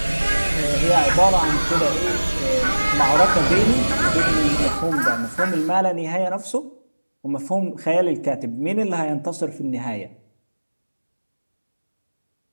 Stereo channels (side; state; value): both; inverted; correlation -1.00